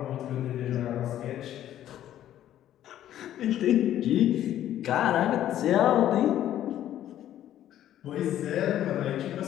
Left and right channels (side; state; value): right; quieter; 12.0 dB